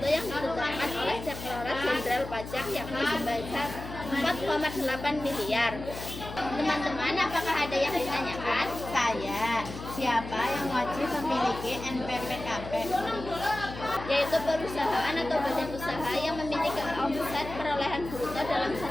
yang ditetapkan oleh Direktorat Jenderal Pajak yakni sebesar 4,8 miliar. Teman-teman, apakah ada yang ditanyakan? Saya, siapa yang wajib memiliki NPPKP? Yaitu perusahaan atau badan usaha yang memiliki omset perolehan bruto dalam 1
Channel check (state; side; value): noise; left; hum, 11 dB below the sound